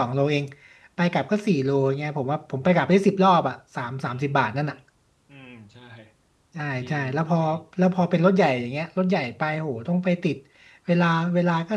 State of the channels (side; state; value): both; identical; correlation 1.00